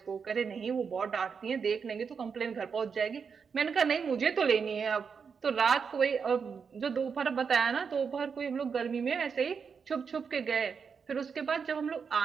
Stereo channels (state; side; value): quieter; left; 6.0 dB